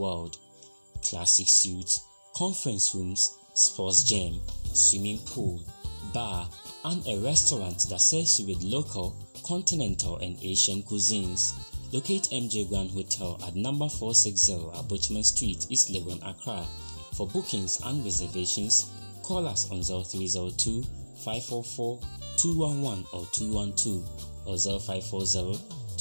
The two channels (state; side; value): inverted; both; correlation -1.00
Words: Classic suites, conference rooms, sports gym, swimming pool, bar, and a restaurant that serves you with local, continental and Asian cuisines. Locate MJ Grand Hotel at number 460 Abochman Street, East Legon, Accra. For bookings and reservations, call us on 0302 544 211 or 212 or 0540